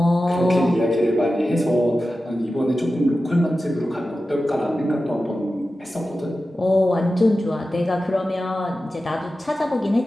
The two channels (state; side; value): normal; both; correlation 0.93